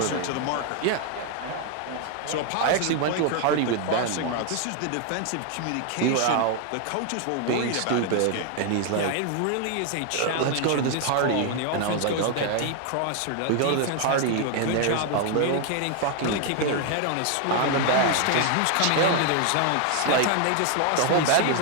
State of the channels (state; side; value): different; both; correlation 0.00